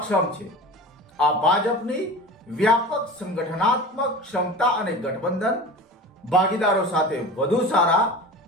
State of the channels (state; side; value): normal; both; correlation 0.34